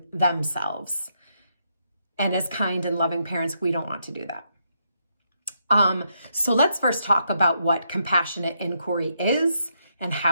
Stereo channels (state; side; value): inverted; both; correlation -0.78